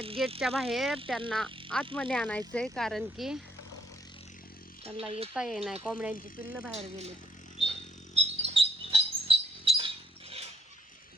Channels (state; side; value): normal; both; correlation 0.71